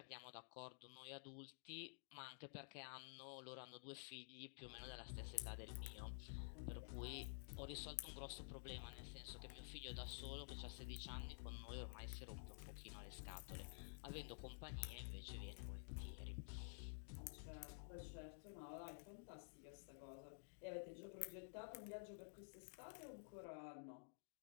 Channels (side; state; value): right; silent; digital silence